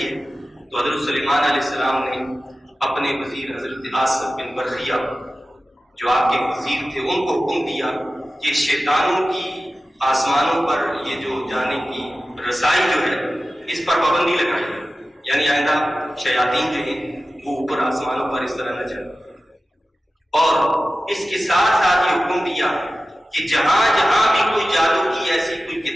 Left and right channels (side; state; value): both; normal; correlation 0.95